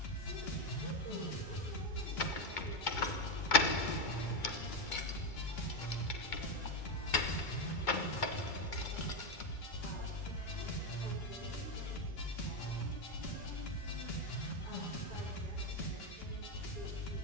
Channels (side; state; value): right; late; 2.2 ms